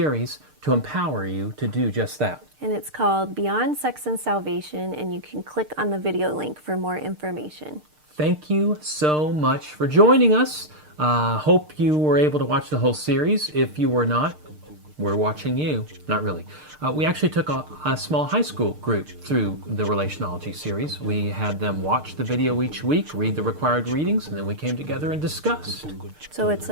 to empower you to do just that. And it's called Beyond Sex and Salvation, and you can click on the video link for more information. Thank you so much for joining us. Hope you were able to watch the whole series. If you were not, we're watching you. Not really. We actually took a small high school group through the Relationology series. We had them watch the video each week, read the required readings, and then we came together and discussed. So it's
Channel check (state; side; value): late; left; 6.6 ms